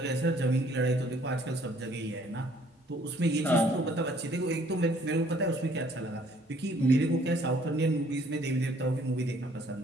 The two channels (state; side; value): normal; both; correlation 0.61